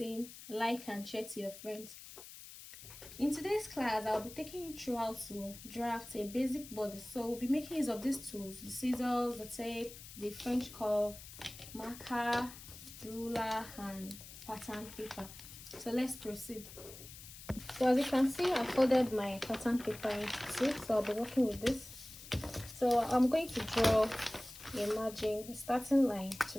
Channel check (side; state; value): left; noise; hiss, 15 dB below the sound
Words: like and share to your friends. In today's class, I'll be taking you through how to draft a basic body. So we'll be making use of these tools: the scissors, the tape, the French curve, marker, ruler and pattern paper. So let's proceed. So as you can see, I folded my pattern paper into two, so I'll be working with this. So I'm going to draw a margin, a starting line to